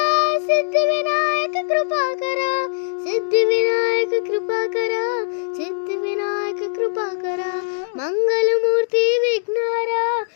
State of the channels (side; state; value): right; silent; digital silence